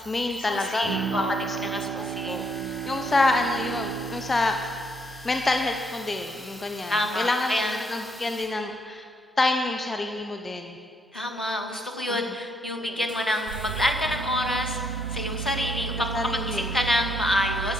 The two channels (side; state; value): both; normal; correlation 0.72